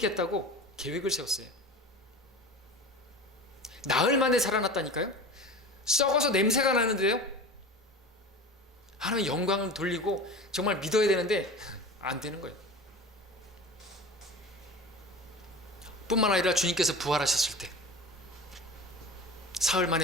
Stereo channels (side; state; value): both; normal; correlation 0.33